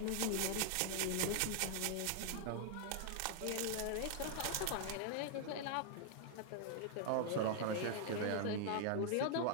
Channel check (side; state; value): both; different; correlation 0.00